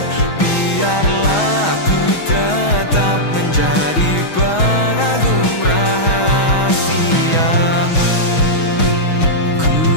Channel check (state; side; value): late; right; 6.2 ms